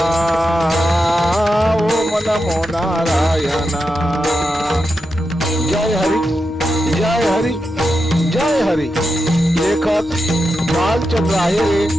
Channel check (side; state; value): both; normal; correlation 0.87